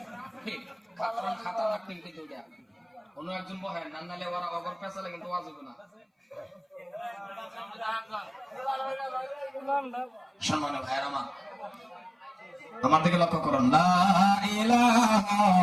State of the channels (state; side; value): identical; both; correlation 1.00